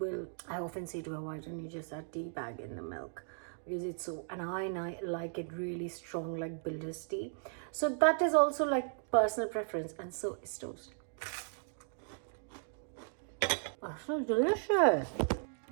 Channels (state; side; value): silent; left; digital silence